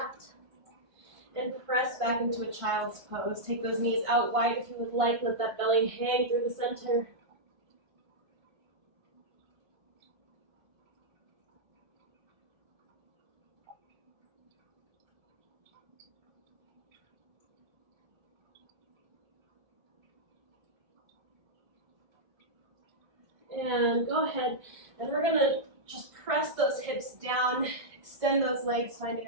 and press back into a child's pose. Take those knees out wide if you would like. Let that belly hang through the center. And go ahead, and we're gonna just press those hips down, extend those legs, finding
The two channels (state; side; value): late; left; 1.5 ms